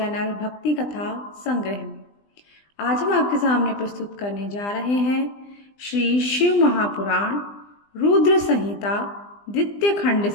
भक्ति कथा संग्रह में। आज हम आपके सामने प्रस्तुत करने जा रहे हैं श्री शिव महापुराण रुद्र संहिता द्वितीय खंड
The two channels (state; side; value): late; right; 20 ms